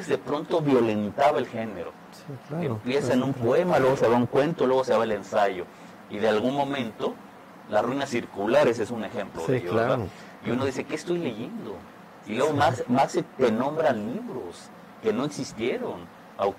de pronto violentaba el género. Sí, claro. Empieza en un poema, luego se va un cuento, luego se va el ensayo. Y de algún momento, Las ruinas circulares es un ejemplo de ello, claro. ¿verdad? Y uno dice, ¿qué estoy leyendo? Y luego más te nombran libros que no existieron,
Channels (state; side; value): identical; both; correlation 1.00